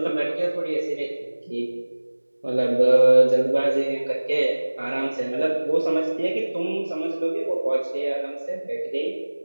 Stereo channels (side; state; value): both; inverted; correlation -1.00